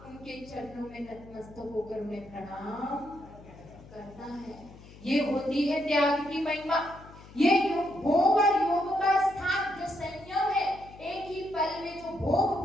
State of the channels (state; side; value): noise; left; hum, 19 dB below the sound